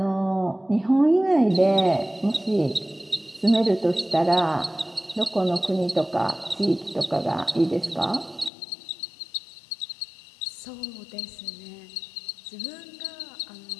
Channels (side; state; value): right; drops out; at 8.5 s